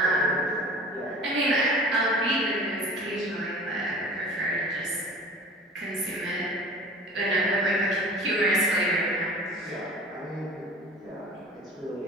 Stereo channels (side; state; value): both; normal; correlation 0.42